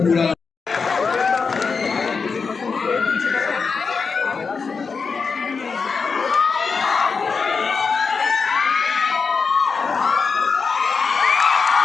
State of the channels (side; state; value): right; quieter; 5.1 dB